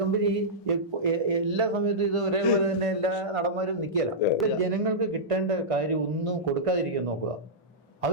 എല്ലാ സമയത്തും ഇത് ഒരേപോലെ തന്നെ എല്ലാ നടന്മാരും നിൽക്കില്ല. ജനങ്ങൾക്ക് കിട്ടേണ്ട കാര്യം ഒന്നും കൊടുക്കാതിരിക്കാൻ നോക്കുക.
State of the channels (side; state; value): both; normal; correlation -0.13